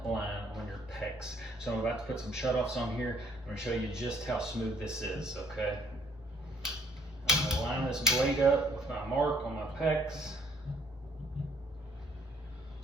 line on your PEX. So I'm about to put some shutoffs on here. I'm going to show you just how smooth this is, okay? I'm going to line this blade up with my mark on my PEX.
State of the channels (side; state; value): both; normal; correlation 0.63